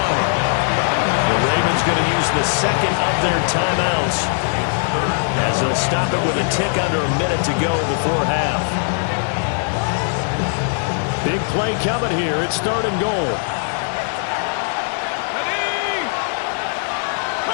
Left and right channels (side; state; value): right; silent; 60 dB below the other